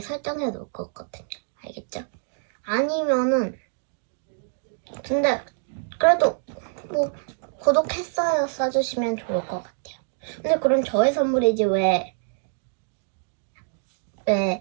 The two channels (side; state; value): left; silent; digital silence